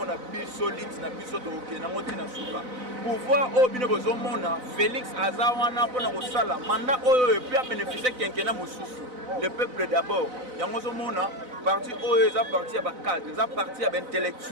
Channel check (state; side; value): late; left; 4.0 ms